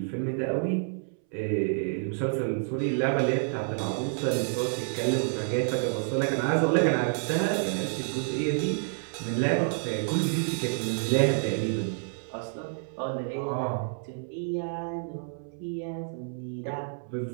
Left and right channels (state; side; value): silent; left; 59 dB below the other